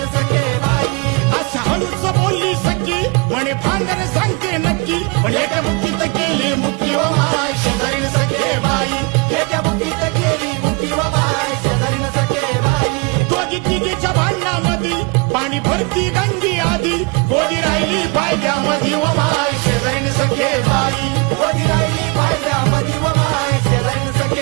सखे बाई अशा हळूच बोलली सखी म्हणे भांडण सांगते नक्की पण एका मुठीत केली मुठी व माय शेजारीन सखे बाई एका मुठीत केली मुठी व माय शेजारीन सखे बाई दोघी तिघीच्या भांडणामध्ये पाणी भरती गंगी आधी गोदी राहिली पायद्यामध्ये व माय शेजारीन सखे बाई गोदी राहिली पायद्यामध्ये व माय शेजारीन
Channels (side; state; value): left; quieter; 30.4 dB